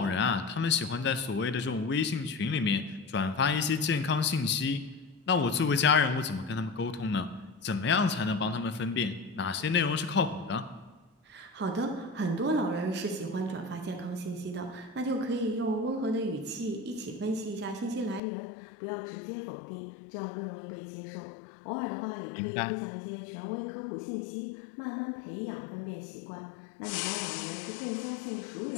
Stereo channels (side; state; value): right; drops out; at 18.2 s